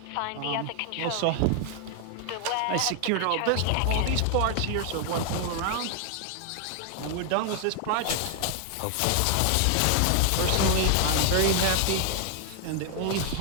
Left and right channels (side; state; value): both; different; correlation 0.00